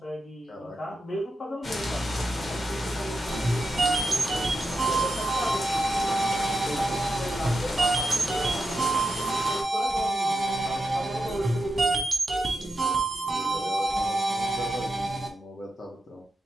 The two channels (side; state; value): both; normal; correlation 0.87